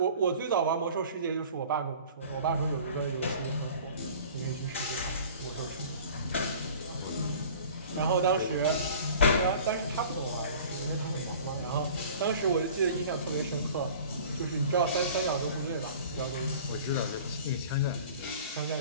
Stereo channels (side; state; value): both; inverted; correlation -0.45